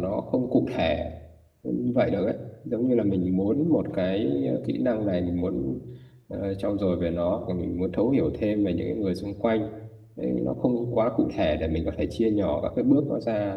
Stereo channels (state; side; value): identical; both; correlation 1.00